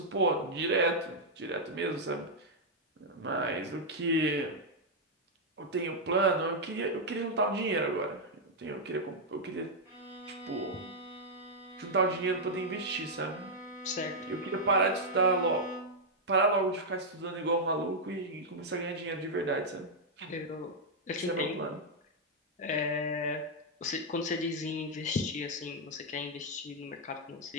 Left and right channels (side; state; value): both; normal; correlation -0.03